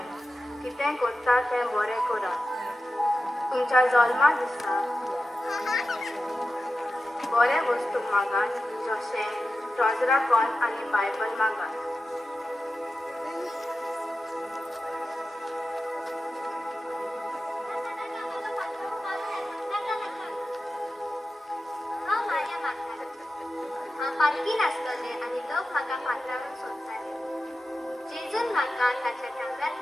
कितें करता तें बरें करात. तुमच्या जल्मा दिसा बरे वस्तू मागात, जशें ट्रॉजरा कॉन आनी बायबल मागात. लागीं नासतले आनी लोक म्हाका पात्रावन सोदताले. जेजून म्हाका ताच्या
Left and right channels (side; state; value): both; normal; correlation 0.93